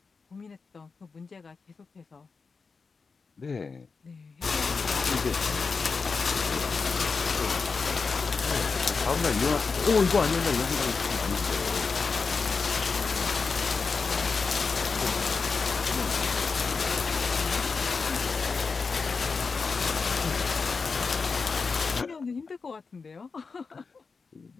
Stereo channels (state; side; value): quieter; right; 4.7 dB